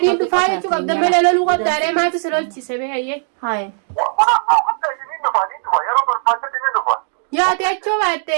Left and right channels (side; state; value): left; silent; digital silence